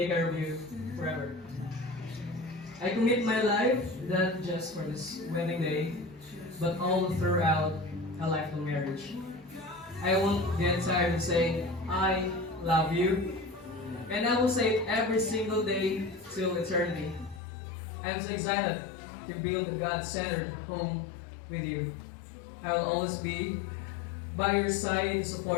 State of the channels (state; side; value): drops out; right; at 17.4 s